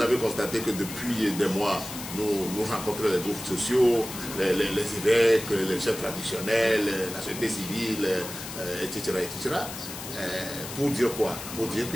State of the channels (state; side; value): noise; left; hiss, 10 dB below the sound